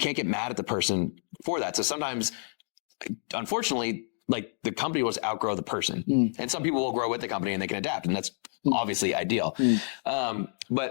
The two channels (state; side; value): silent; right; digital silence